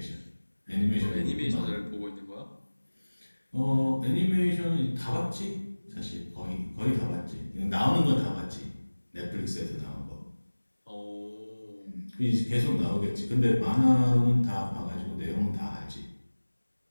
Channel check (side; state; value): both; inverted; correlation -1.00